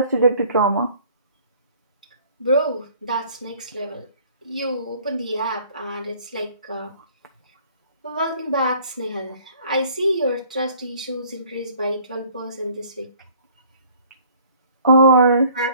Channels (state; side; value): inverted; both; correlation -0.55